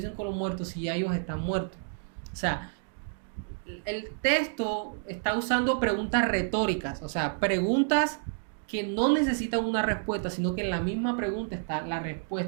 con los muertos si ya ellos están muertos? O sea, el texto está usando preguntas retóricas, o sea, preguntas que no necesitan una respuesta, sino que en la misma pregunta está la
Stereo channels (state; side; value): silent; left; digital silence